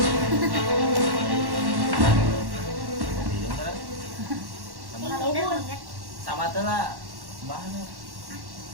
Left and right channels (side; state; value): left; late; 1.1 ms